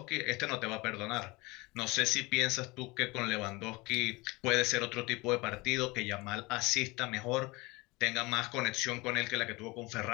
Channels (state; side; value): quieter; right; 23.8 dB